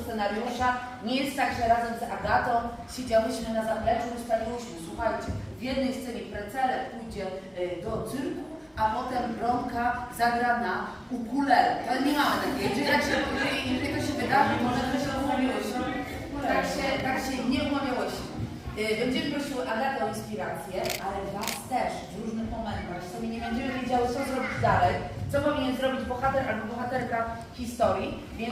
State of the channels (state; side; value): identical; both; correlation 1.00